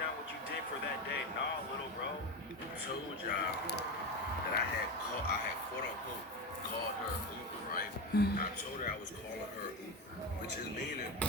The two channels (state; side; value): normal; both; correlation 0.19